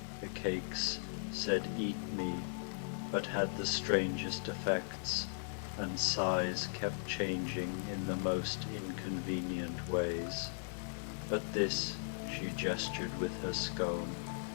The cakes said 'eat me,' but had the strangest effects, and size kept changing in the most inconvenient ways. But this," she gestured with her scone,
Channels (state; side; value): silent; right; 53 dB below the other